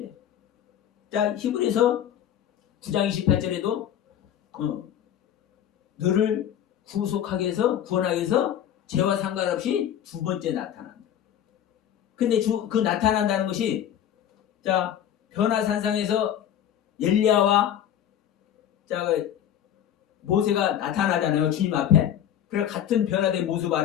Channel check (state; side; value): quieter; right; 10.3 dB